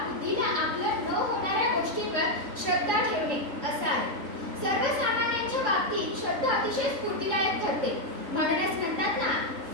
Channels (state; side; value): late; left; 3.6 ms